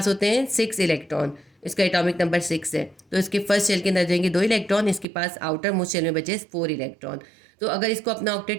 होते हैं 6 इलेक्ट्रॉन, इसका एटॉमिक नंबर 6 है, तो इसके फर्स्ट शेल के अंदर जाएंगे 2 इलेक्ट्रॉन, इसके पास आउटर मोस्ट शेल में बचे 4 इलेक्ट्रॉन। तो अगर इसको अपना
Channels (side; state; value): left; drops out; at 5.1 s